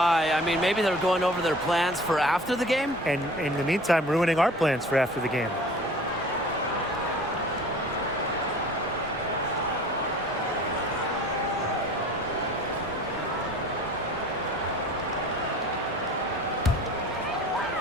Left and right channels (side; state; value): both; normal; correlation 0.45